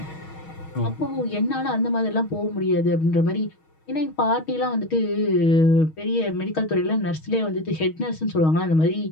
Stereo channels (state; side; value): late; right; 6.3 ms